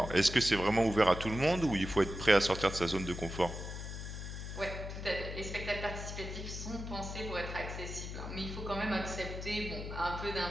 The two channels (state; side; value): noise; left; hum, 7 dB below the sound